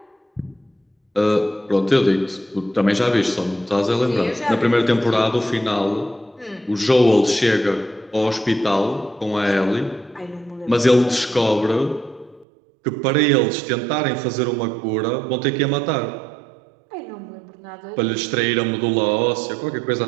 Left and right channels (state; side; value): drops out; left; at 12.5 s